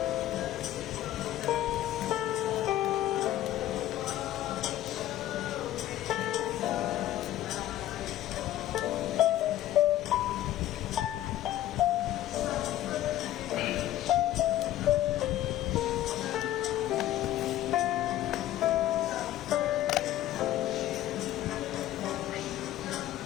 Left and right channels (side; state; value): right; quieter; 13.5 dB